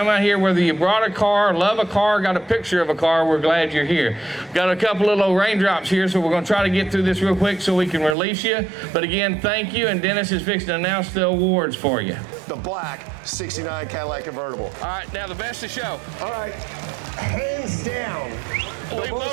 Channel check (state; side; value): drops out; left; at 8.2 s